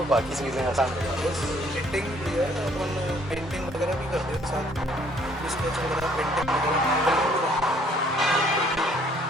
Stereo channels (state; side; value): normal; both; correlation 0.62